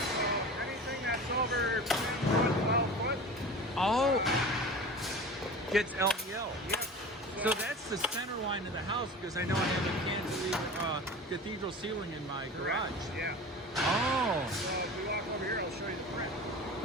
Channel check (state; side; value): normal; both; correlation 0.35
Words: anything that's over 10 foot, 12 foot. Oh, gets LVL. Yep. So that's the center line of the house because I know I have a cantilever cathedral ceiling in my garage. Correct. Yeah. Oh. So if we walk over here, I'll show you the print.